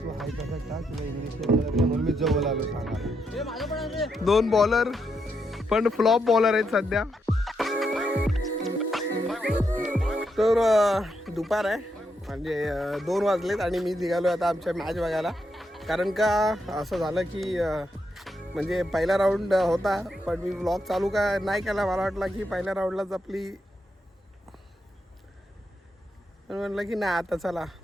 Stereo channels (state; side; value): normal; both; correlation 0.81